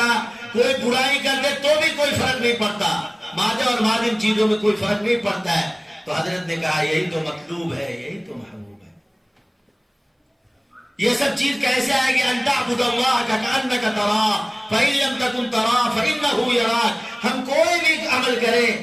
کوئی برائی کر دے تو بھی کوئی فرق نہیں پڑتا، مادہ اور مادم چیزوں میں کوئی فرق نہیں پڑتا ہے۔ تو حضرت نے کہا یہی تو مطلوب ہے، یہی تو محبوب ہے۔ یہ سب چیز کیسے آئے گی؟ ان تعبد اللہ کأنک تراہ فإن لم تکن تراہ فإنہ یراک۔ ہم کوئی بھی عمل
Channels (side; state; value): both; identical; correlation 1.00